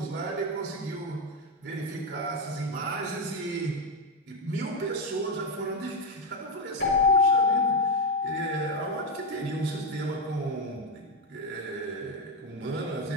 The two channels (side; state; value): both; normal; correlation 0.07